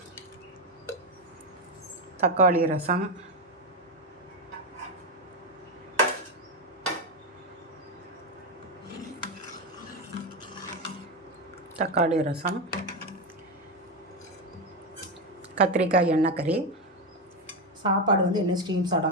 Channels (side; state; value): both; normal; correlation 0.11